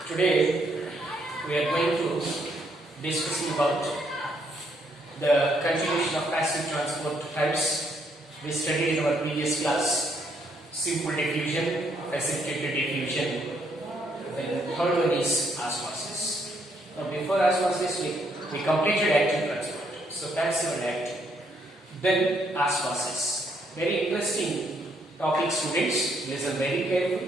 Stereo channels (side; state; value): both; normal; correlation 0.72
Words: Today we are going to discussing about the continuation of passive transport types. We studied in our previous class simple diffusion, precipitated diffusion. Then the third one is osmosis. Now before osmosis we completed active transport. So passive and active. Then osmosis. Very interesting topic, students. Listen very